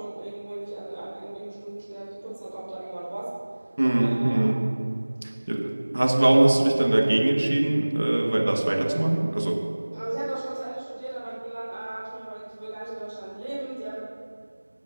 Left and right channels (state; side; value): inverted; both; correlation -1.00